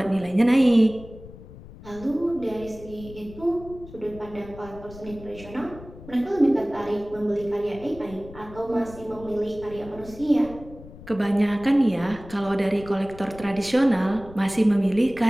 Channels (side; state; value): left; noise; rumble, 17 dB below the sound